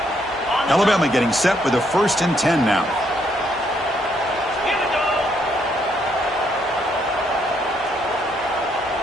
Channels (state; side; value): normal; both; correlation 0.72